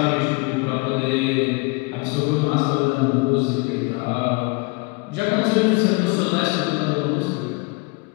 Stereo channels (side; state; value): right; quieter; 28.4 dB